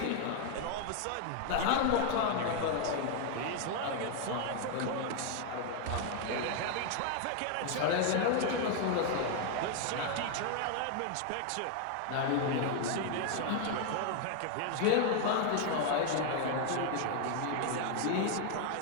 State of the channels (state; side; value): different; both; correlation 0.00